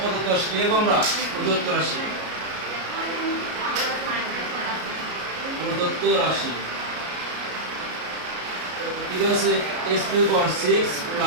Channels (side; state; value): left; late; 33 ms